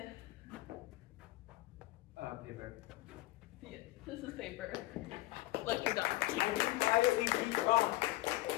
Paper. Yeah, this is paper. Lecture done. Why did we beat wrong?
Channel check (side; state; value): right; quieter; 18.3 dB